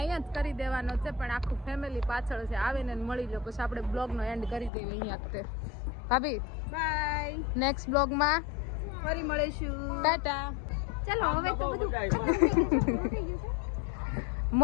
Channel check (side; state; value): right; drops out; at 4.7 s